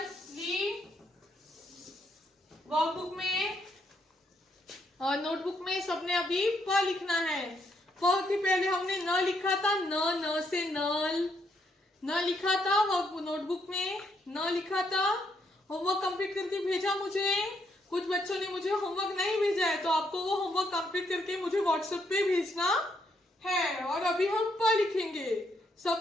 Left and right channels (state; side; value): normal; both; correlation 0.74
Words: ली? वर्कबुक में और नोटबुक में सबने अभी प लिखना है। प के पहले हमने न लिखा था, न से नल, न लिखा था नोटबुक में, न लिखा था। होमवर्क कंप्लीट करके भेजा मुझे। कुछ बच्चों ने मुझे होमवर्क नहीं भेजा है, तो आपको वो होमवर्क कंप्लीट करके मुझे व्हाट्सएप पे भेजना है। और अभी हम प लिखेंगे।